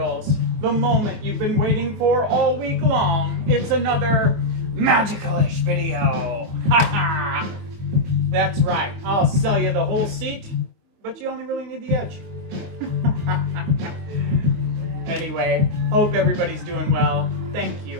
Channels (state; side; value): late; left; 24 ms